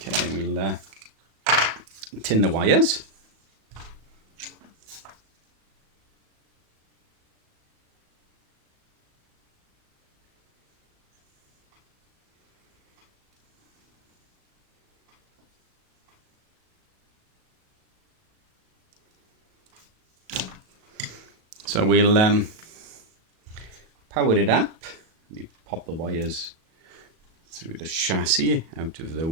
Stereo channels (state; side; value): late; left; 37 ms